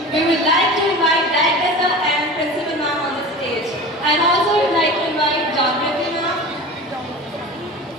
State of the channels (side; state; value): both; normal; correlation 0.34